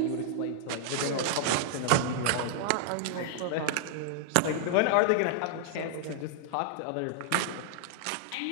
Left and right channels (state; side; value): different; both; correlation 0.00